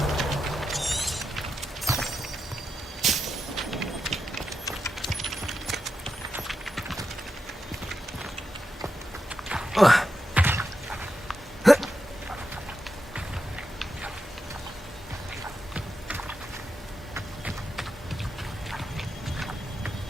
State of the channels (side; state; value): both; normal; correlation 0.88